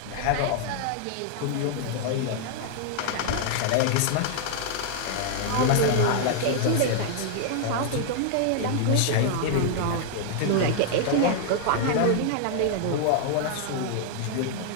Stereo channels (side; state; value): both; different; correlation -0.01